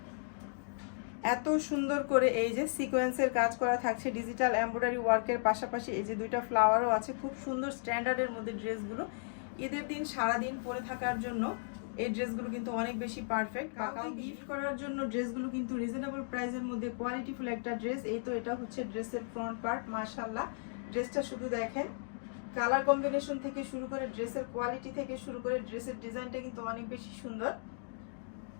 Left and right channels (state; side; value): silent; right; digital silence